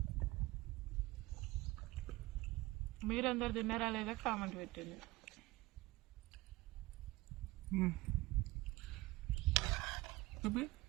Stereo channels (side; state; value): left; quieter; 20.2 dB